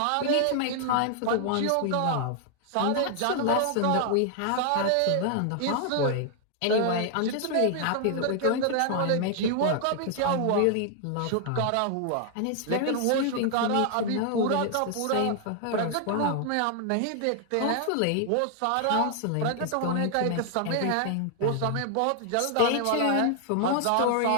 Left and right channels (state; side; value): different; both; correlation 0.00